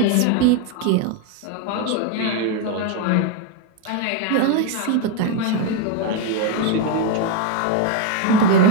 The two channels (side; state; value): both; different; correlation 0.01